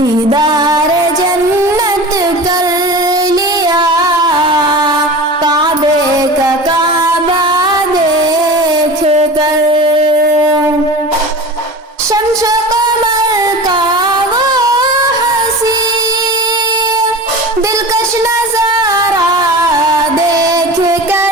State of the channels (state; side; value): normal; both; correlation 0.33